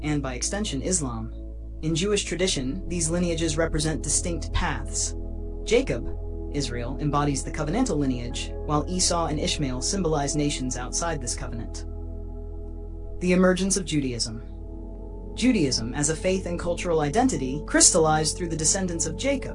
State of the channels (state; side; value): identical; both; correlation 1.00